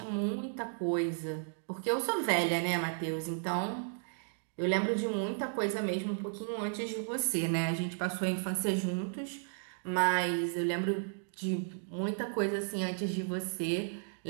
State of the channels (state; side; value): silent; left; digital silence